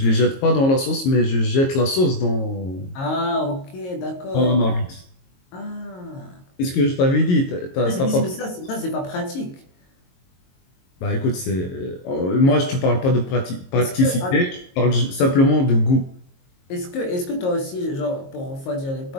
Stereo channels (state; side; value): late; right; 22 ms